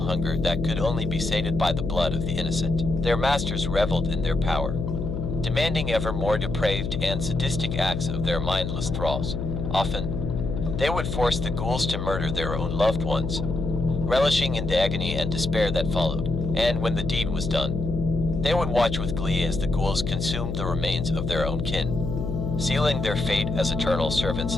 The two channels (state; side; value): noise; left; hum, 3 dB below the sound